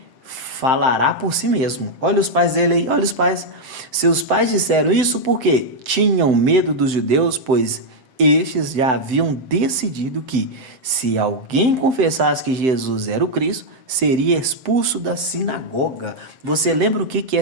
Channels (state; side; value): late; left; 7.8 ms